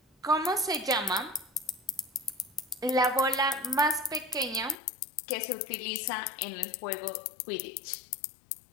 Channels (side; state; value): right; drops out; at 4.8 s